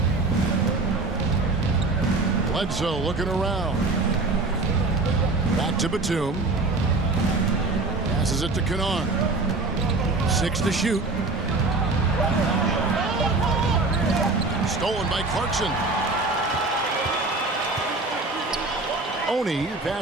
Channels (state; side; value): quieter; left; 3.4 dB